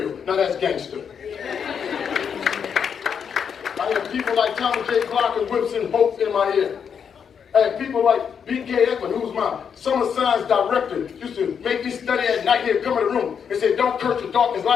Now that's gangster. I I had people like Thomas J. Clark and Whipson Hope in my ear. I had people like B.K. Ekman, who was my summer science director, used to make me study at night. He'd come in the room and say, don't curse the darkness,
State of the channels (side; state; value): right; quieter; 7.2 dB